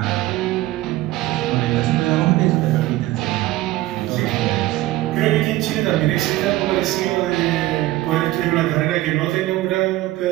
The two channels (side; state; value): left; quieter; 16.8 dB